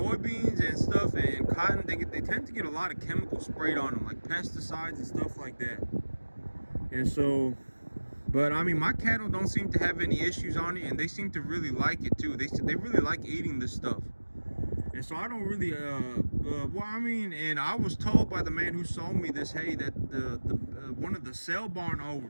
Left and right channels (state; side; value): inverted; both; correlation -1.00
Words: and stuff and cotton. They tend to get a lot of chemicals sprayed on them, like pesticides and stuff like that. And so, but I mean, my cattle don't seem to have any issues on it, and they seem to really like it too. They really like eating this stuff. And so I don't really, well, I mean, and I was told by the man who sold me this hay that one of the sale barn